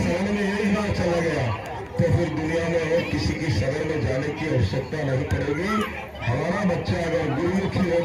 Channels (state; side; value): identical; both; correlation 1.00